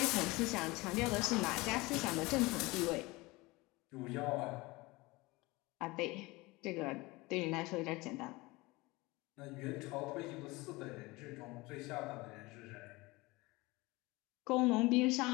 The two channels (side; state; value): right; quieter; 22.4 dB